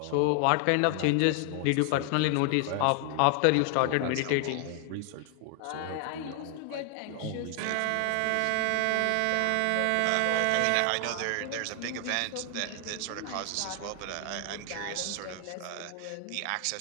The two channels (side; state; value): both; different; correlation 0.00